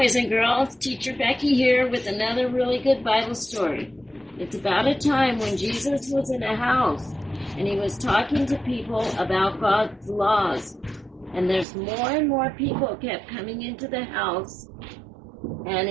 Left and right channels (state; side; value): drops out; left; at 11.7 s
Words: and girls. Teacher Becky here with another really good Bible story. It's about a time when Jesus was in a house and he was talking to people about God's laws. And there's more and more people kept coming into the house,